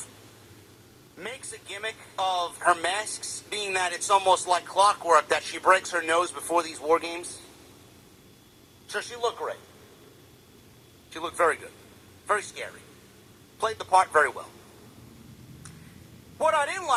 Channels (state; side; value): identical; both; correlation 1.00